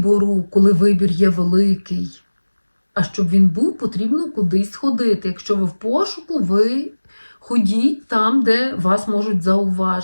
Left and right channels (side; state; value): both; inverted; correlation -1.00